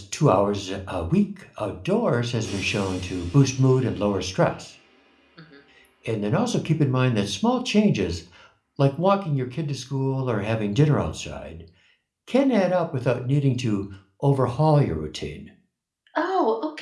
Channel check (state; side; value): identical; both; correlation 1.00